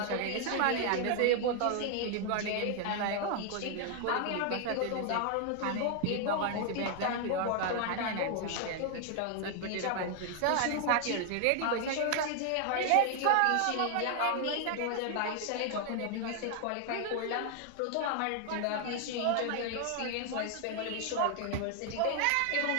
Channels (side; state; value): both; different; correlation 0.00